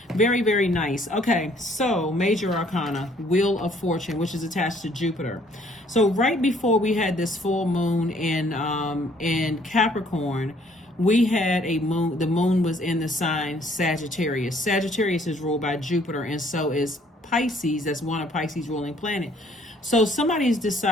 Very, very nice. Okay, so Major Arcana, Wheel of Fortune, which is attached to Jupiter. So right before we had this full moon in Capricorn, we had a moon. The moon was in the sign Sagittarius. Sagittarius is ruled by Jupiter, and so is Pisces. That's one of Pisces' ruling planet. So somebody's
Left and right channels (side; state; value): both; normal; correlation 0.62